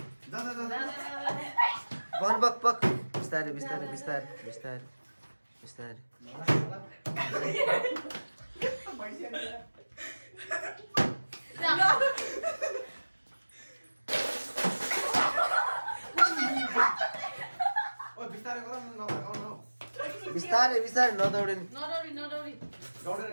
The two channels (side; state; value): both; inverted; correlation -1.00